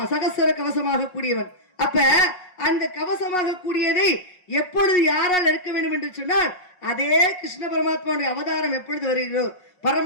சகசர கவசமாக கூடியவன். அப்ப அந்த கவசமாக கூடியதை எப்பொழுது யாரால் எடுக்க வேண்டும் என்று சொன்னால் அதே கிருஷ்ண பரமாத்மாவுடைய அவதாரம் எப்பொழுது வருகிறோ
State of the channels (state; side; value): late; right; 5.5 ms